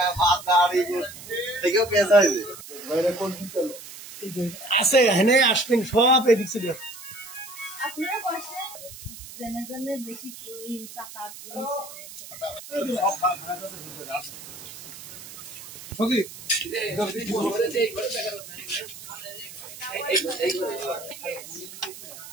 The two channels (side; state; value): right; noise; hiss, 14 dB below the sound